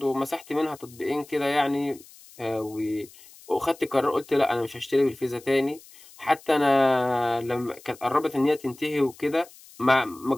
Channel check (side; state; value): left; noise; hiss, 22 dB below the sound